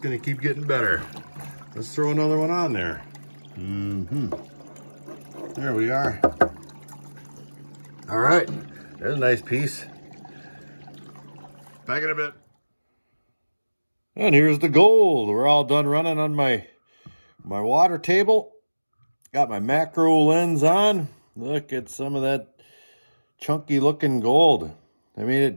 to keep getting better. Let's throw another one on there. There we are. All right, there's a nice piece. Back in a bit. And here's the gold. We're all done running on my water table. Got my macro lens on. Look at some of that chunky looking gold. I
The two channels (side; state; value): both; inverted; correlation -1.00